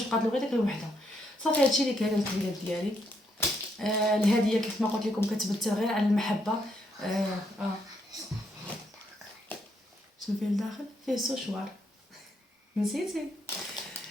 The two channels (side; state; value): both; normal; correlation 0.76